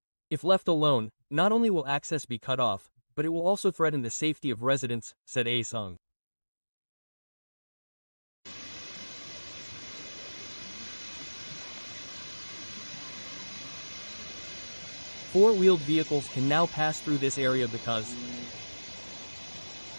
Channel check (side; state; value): both; inverted; correlation -1.00